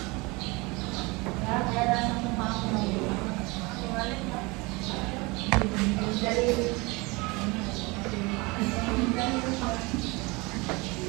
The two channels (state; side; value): quieter; left; 25.4 dB